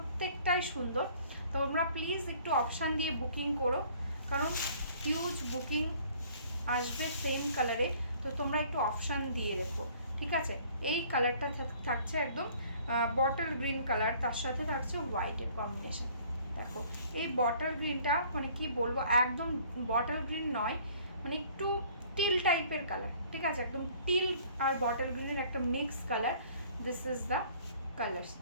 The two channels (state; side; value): inverted; both; correlation -0.55